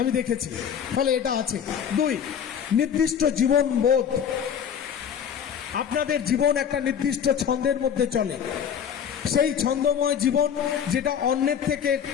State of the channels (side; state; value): right; quieter; 8.2 dB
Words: দেখেছি, ফলে এটা আছে। 2, নির্দিষ্ট জীবন বোধ। আপনাদের জীবন একটা নির্দিষ্ট ছন্দের মধ্যে চলে। সেই ছন্দময় জীবন যেটা অন্যের থেকে